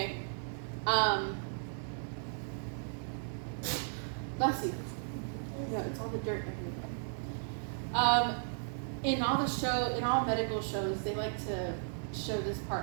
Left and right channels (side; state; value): left; silent; digital silence